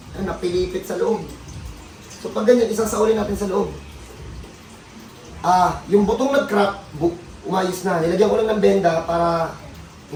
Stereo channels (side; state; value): both; identical; correlation 1.00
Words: Ayun, napilipit sa loob. So, pag ganyan, isang saulin natin sa loob. Yung butong nag-crack, umayos na. Nilagyan ko lang ng benda para